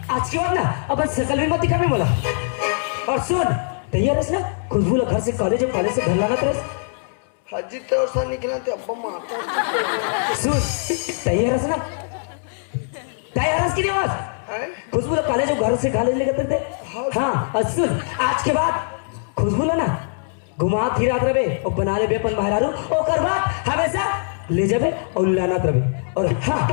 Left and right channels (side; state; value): right; silent; 64 dB below the other